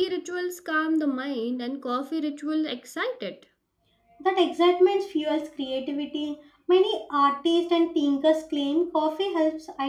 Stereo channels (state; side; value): identical; both; correlation 1.00